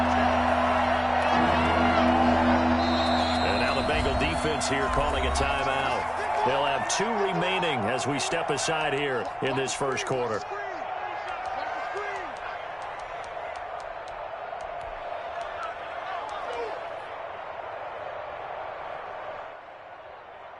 And now the Bengal defense here calling a timeout. They'll have 2 remaining as we step aside here in this first quarter.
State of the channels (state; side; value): identical; both; correlation 1.00